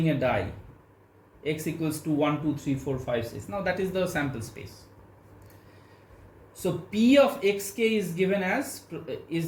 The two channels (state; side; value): identical; both; correlation 1.00